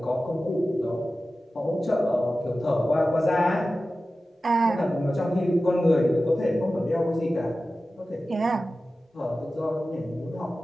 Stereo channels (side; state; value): both; normal; correlation 0.95